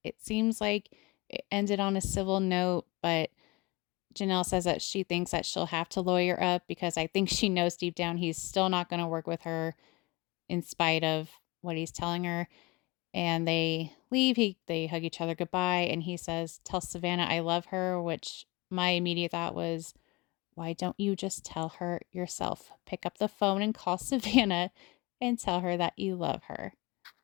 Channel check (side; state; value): right; quieter; 24.2 dB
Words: it seems like it ended on a civil note, but Janelle says that she thinks that she'll have to lawyer up because I think she knows deep down he's still not going to work with her in spite of what he's telling her. And they leave. They hug each other goodbye. And he says, "Tell Savannah I love her," which my immediate thought was, why don't you just tell her yourself? Pick up the phone and call Savannah and tell her that you love her.